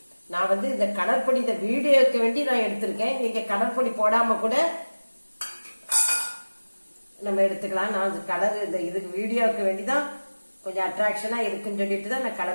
நான் இந்த கடற்பொடி இந்த வீடியோக்கு வேண்டி நான் எடுத்திருக்கேன். நீங்க கடற்பொடி போடாம கூட நம்ம எடுத்துக்கலாம். நான் கலர் இந்த இதுக்கு வீடியோக்கு வேண்டிதான் கொஞ்சம் அட்ராக்ஷனா இருக்குன்னு சொல்லிட்டு தான் நான்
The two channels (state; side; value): inverted; both; correlation -1.00